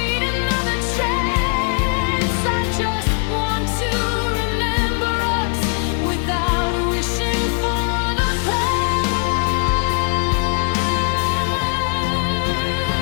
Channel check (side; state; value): right; quieter; 38.2 dB